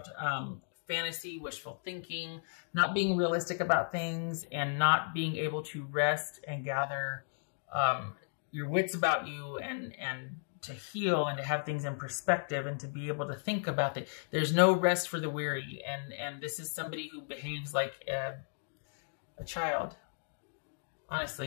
fantasy, wishful thinking, not being realistic about things, and not being able to rest and gather your wits about you and to heal and to have things in perspective and to be able to think about it. There's no rest for the weary. And this is somebody who behaves like a child.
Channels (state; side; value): silent; right; digital silence